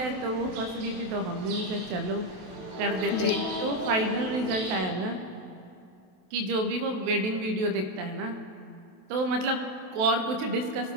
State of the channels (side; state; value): left; late; 27 ms